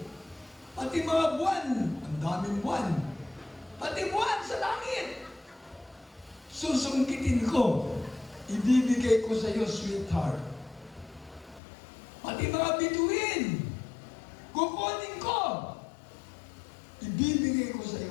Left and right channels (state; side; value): drops out; right; at 11.6 s